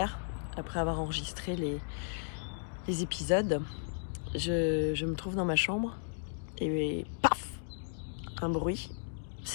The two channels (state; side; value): silent; right; digital silence